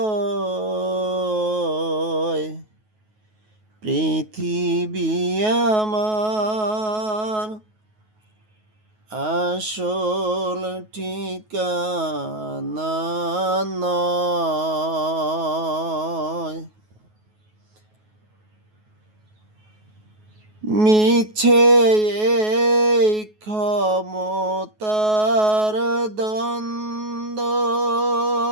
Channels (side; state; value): left; late; 9.4 ms